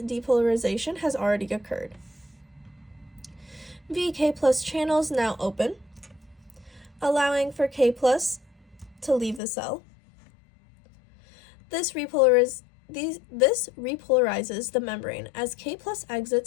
depolarization has already occurred. VK+ channels now open, allowing for K+ to leave the cell. This repolarizes the membrane as K+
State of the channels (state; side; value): drops out; right; at 9.4 s